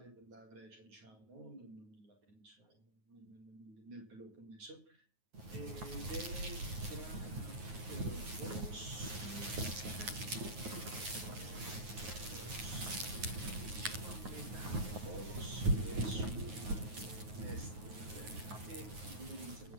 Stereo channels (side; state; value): left; late; 9.4 ms